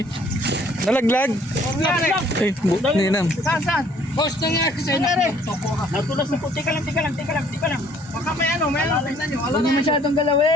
nalaglag. Ay, ninam. Saan? Boss, nangyari sa'yo. Natulas na po. Teka lang. Baka may ano, tingnan nyo. Huwag mo masyadong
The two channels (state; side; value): normal; both; correlation 0.60